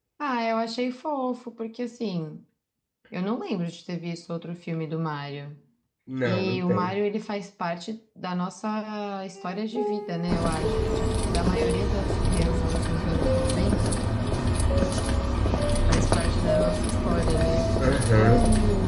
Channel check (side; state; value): both; identical; correlation 1.00